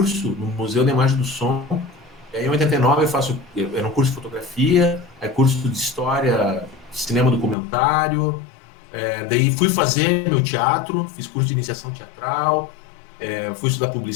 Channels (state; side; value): drops out; right; at 7.6 s